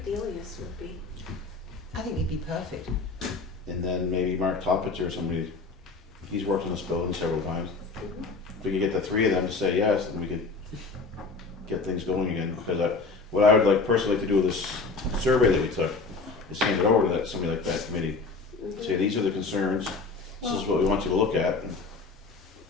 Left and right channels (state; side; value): quieter; right; 4.1 dB